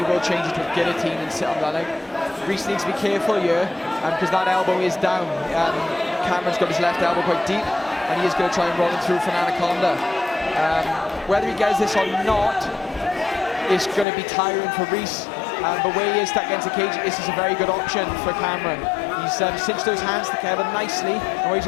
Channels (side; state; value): right; drops out; at 14.1 s